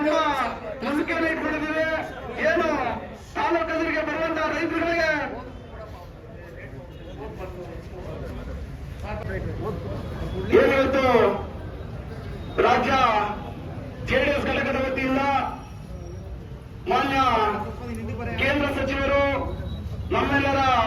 ನಂಬಿಕೆಯನ್ನು ಇಟ್ಕೊಂಡಿದ್ದೀವಿ. ಏನು ತಾಲೂಕು ಕಚೇರಿಗೆ ಬರುವಂತಹ ರೈತರುಗಳಿಗೆ ಏನಿವತ್ತು ರಾಜ್ಯ ಜೆಡಿಎಸ್ ಘಟಕದ ವತಿಯಿಂದ ಮಾನ್ಯ ಕೇಂದ್ರ ಸಚಿವರು, ನಮ್ಮೆಲ್ಲರ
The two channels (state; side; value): identical; both; correlation 1.00